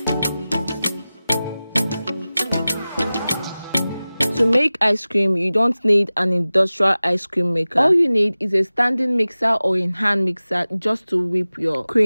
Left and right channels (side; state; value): both; inverted; correlation -0.97